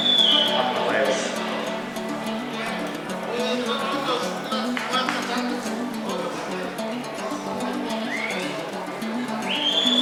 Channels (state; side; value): identical; both; correlation 1.00